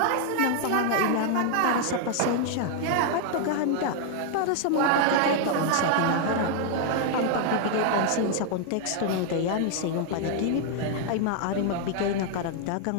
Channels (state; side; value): different; both; correlation 0.00